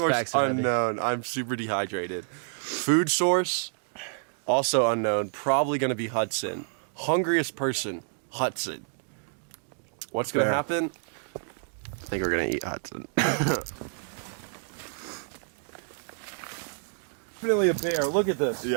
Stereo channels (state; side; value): silent; left; digital silence